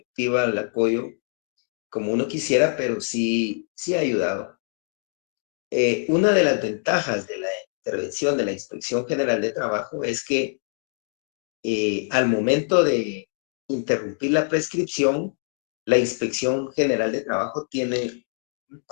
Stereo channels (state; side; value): silent; right; 62 dB below the other